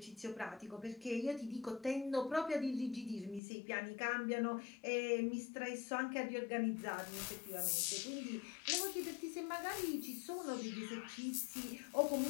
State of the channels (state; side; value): drops out; right; at 3.4 s